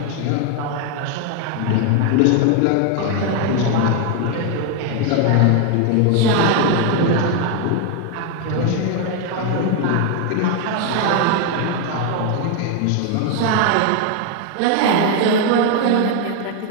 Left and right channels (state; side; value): different; both; correlation 0.01